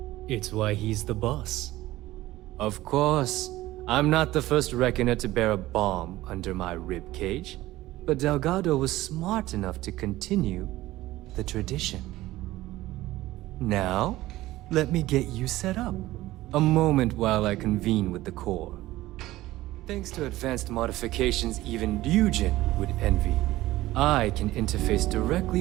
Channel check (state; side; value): quieter; left; 16.8 dB